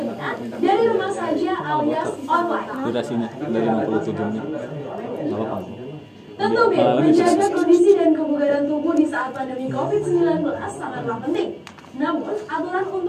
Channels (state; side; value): identical; both; correlation 1.00